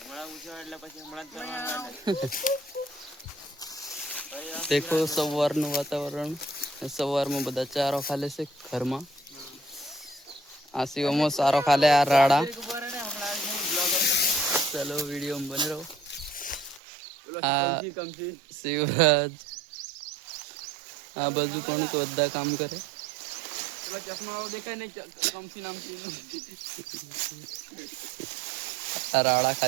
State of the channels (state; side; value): drops out; left; at 16.8 s